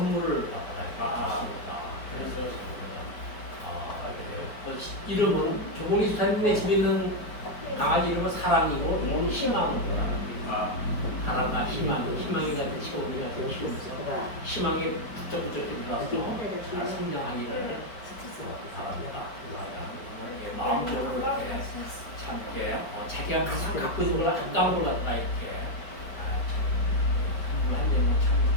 받았습니다. 그래서 이름은 조국내 집사님의 집에 있는 강아지 이름은 사랑이고 이름은 희망입니다. 사랑과 희망이 같은 채원이가 키우면서 희망이 부쩍부쩍 일어나서 잘 성장하기를 바랍니다. 마음적으로 이렇게 참게 자기가 항상 갖고 있는 걸 한가운데 갖다가 이렇게 선물한다는 참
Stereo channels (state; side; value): late; right; 4.8 ms